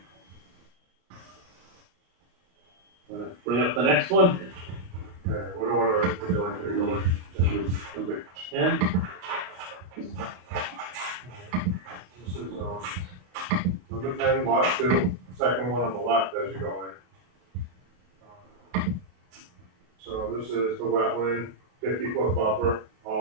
Wanna bring up the next one? Okay, what order would you like me to go in? Number 10. This is, number 10, lot 2, second one on the left as you go in. So this is the wetland, 50-foot buffer.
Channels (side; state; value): left; late; 34 ms